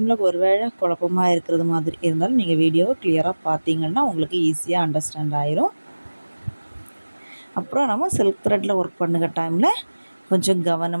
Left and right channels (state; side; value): inverted; both; correlation -1.00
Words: ஒரு வேளை குழப்பமாக இருக்கிறது மாதிரி இருந்தாலும் நீங்கள் வீடியோவை கிளியராக பார்த்தீங்கன்னா உங்களுக்கு ஈஸியாக அண்டர்ஸ்டாண்ட் ஆயிரும். அப்புறம் நம்ம சில்க் த்ரெட்டில் ஒர்க் பண்ணுற டைமில் கொஞ்சம்